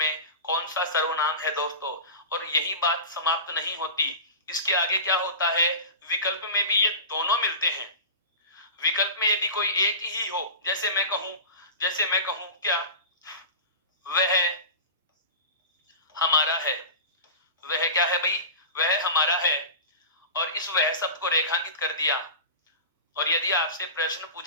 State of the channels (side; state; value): both; inverted; correlation -0.31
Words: कौन सा सर्वनाम है दोस्तों। और यही बात समाप्त नहीं होती, इसके आगे क्या होता है, विकल्प में भी ये दोनों मिलते हैं। विकल्प में यदि कोई एक ही हो, जैसे मैं कहूं क्या वह हमारा है, वह क्या है भाई, वह हमारा है, और इस वह शब्द को रेखांकित कर दिया, और यदि आपसे प्रश्न